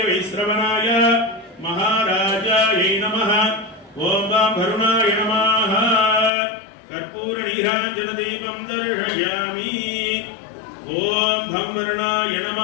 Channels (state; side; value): drops out; right; at 6.3 s